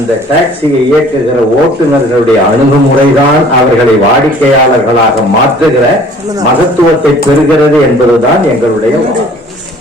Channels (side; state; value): both; normal; correlation 0.52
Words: டாக்ஸியை இயக்குகிற ஓட்டுநர்களுடைய அணுகுமுறைதான் அவர்களை வாடிக்கையாளர்களாக மாற்றுகிற மகத்துவத்தை பெறுகிறது என்பதுதான் எங்களுடைய வாதம்.